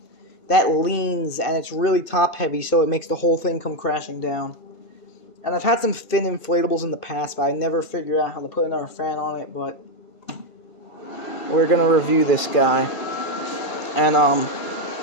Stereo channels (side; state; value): left; late; 1.5 ms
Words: that leans, and it's really top heavy, so it makes the whole thing come crashing down. And I've had some thin inflatables in the past, but I never figured out how to put another fan on it, but we're gonna review this guy. And I'm